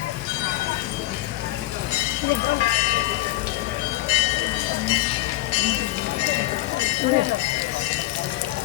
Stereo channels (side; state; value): right; quieter; 17.7 dB